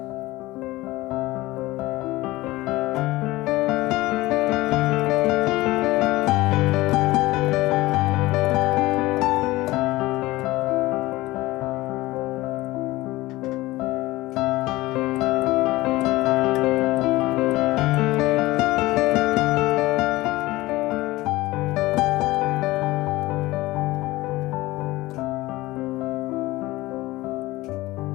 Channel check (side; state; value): right; quieter; 19.0 dB